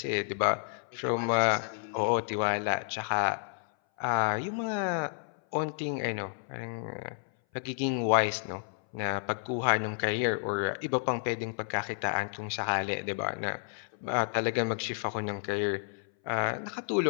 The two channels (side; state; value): right; silent; 57 dB below the other